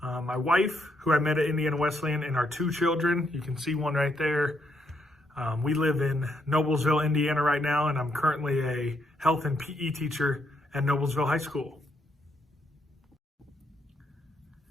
My wife, who I met at Indiana Wesleyan, and our two children. You can see one right there. We live in Noblesville, Indiana right now, and I'm currently a health and PE teacher at Noblesville High School.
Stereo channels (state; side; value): normal; both; correlation 0.76